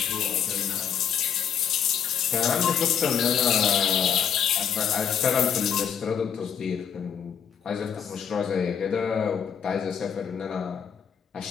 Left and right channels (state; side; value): quieter; right; 7.9 dB